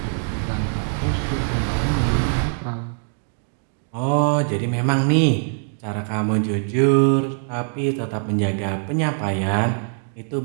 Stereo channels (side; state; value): left; silent; 58 dB below the other